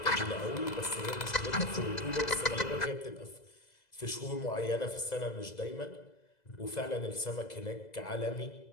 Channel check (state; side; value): late; right; 2.0 ms